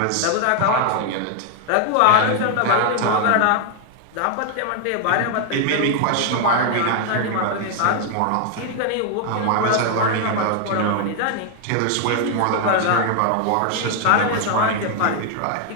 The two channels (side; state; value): both; different; correlation 0.00